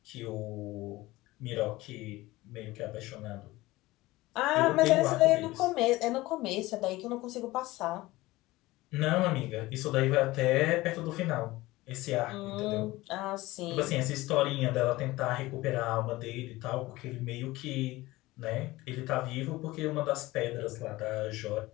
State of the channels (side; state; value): right; quieter; 19.1 dB